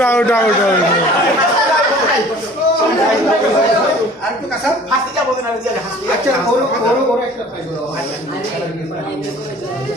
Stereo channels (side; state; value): both; normal; correlation 0.48